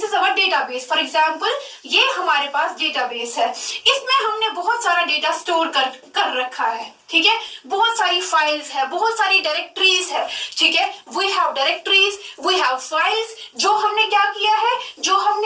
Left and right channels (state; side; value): identical; both; correlation 1.00